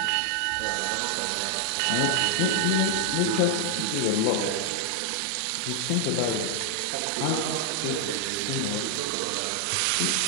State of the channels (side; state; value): both; different; correlation 0.00